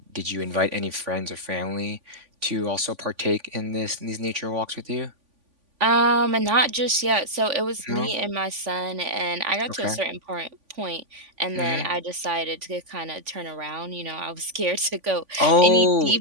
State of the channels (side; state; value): left; late; 3.5 ms